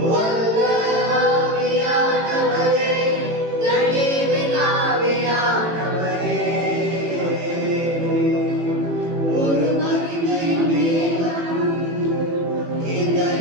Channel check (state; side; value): late; left; 18 ms